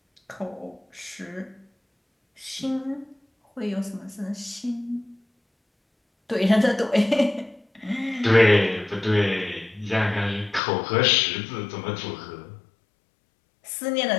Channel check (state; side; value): drops out; right; at 10.6 s